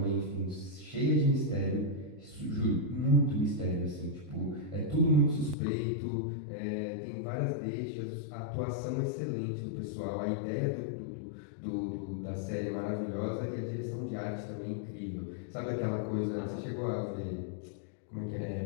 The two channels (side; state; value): right; drops out; at 5.6 s